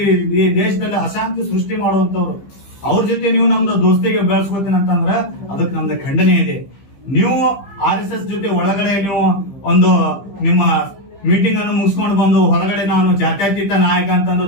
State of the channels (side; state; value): right; late; 15 ms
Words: ಈ ದೇಶದಲ್ಲಿ ಅಶಾಂತಿ ಸೃಷ್ಟಿ ಮಾಡುವಂತವ್ರು. ಅವ್ರ ಜೊತೆ ನೀವು ನಮ್ದು ದೋಸ್ತಿಗೆ ಬೆಳೆಸ್ಕೋತೀನಿ ಅಂತಂದ್ರ ಅದಕ್ಕೆ ನಮ್ದು ಖಂಡನೆ ಇದೆ. ನೀವು RSS ಜೊತೆ ಒಳಗಡೆ ನೀವು ಒಂದು ನಿಮ್ಮ ಮೀಟಿಂಗ್ ಅನ್ನು ಮುಗಿಸ್ಕೊಂಡು ಬಂದು ಹೊರಗಡೆ ನಾನು ಜಾತ್ಯತೀತ ನಾಯಕ ಅಂತಂದು